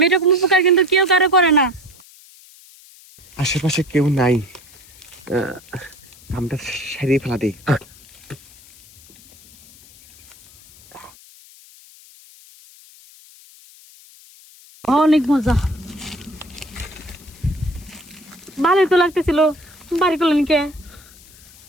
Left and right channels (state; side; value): noise; left; hiss, 24 dB below the sound